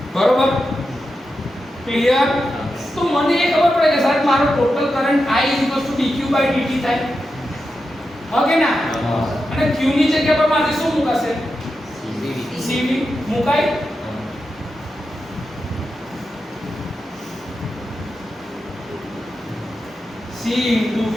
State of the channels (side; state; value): both; normal; correlation 0.89